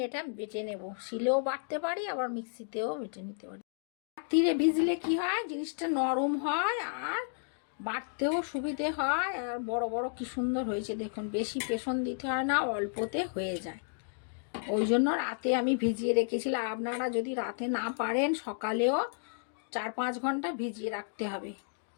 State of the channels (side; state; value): right; silent; digital silence